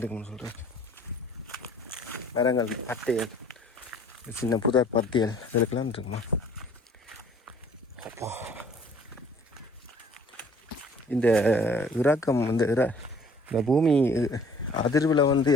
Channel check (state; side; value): normal; both; correlation 0.55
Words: இருக்குன்னு சொல்கிறார். மரங்கள் பத்தையல், சின்ன புதர் பத்தியல் இதுக்கெல்லாம் இருக்குமா. அப்பா இந்த இறக்கம் இந்த பூமி அதிர்வில் வந்து